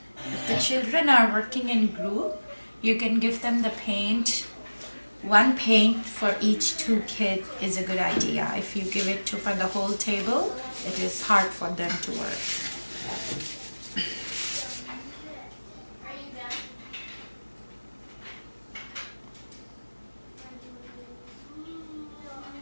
The children are working in group, you can give them the paint. One paint for each two kids is a good idea. If you give it to for the whole table, it is hard for them to work.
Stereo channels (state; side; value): inverted; both; correlation -1.00